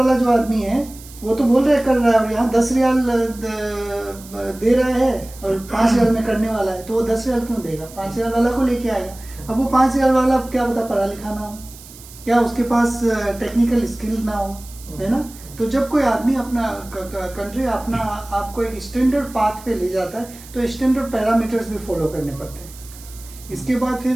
जो आदमी है वो तो बोल रहा है कर रहा है, और यहाँ 10 रियाल दे रहा है और 5 रियाल में करने वाला है, तो वो 10 रियाल क्यों देगा? 5 रियाल वाला को लेके आएगा। अब वो 5 रियाल वाला क्या पता पढ़ा लिखा ना हो, क्या उसके पास टेक्निकल स्किल ना हो, है ना। तो जब कोई आदमी अपना कंट्री अपना आपको एक स्टैंडर्ड पाथ पे ले जाता है तो स्टैंडर्ड पैरामीटर्स भी फॉलो करने पड़ते हैं। इसके बाद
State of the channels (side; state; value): right; noise; hiss, 19 dB below the sound